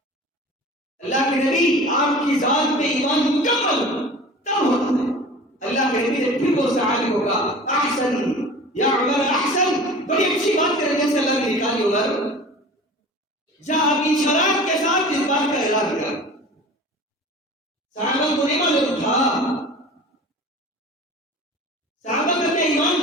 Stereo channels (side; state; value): both; normal; correlation 0.40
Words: اللہ کے نبی آپ کی ذات پہ ایمان مکمل تب ہوتا ہے. اللہ کے نبی نے پھر وہ صحابی ہوگا احسن یا عمر احسن. بڑی اچھی بات کرنے سے اللہ نے نکالی عمر، جا اپنی شرائط کے ساتھ اس بات کا اعلان کر. صحابہ کو نہیں معلوم تھا، صحابہ کا ایمان